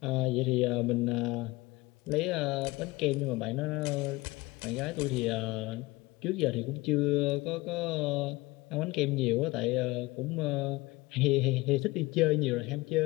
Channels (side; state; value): right; quieter; 21.5 dB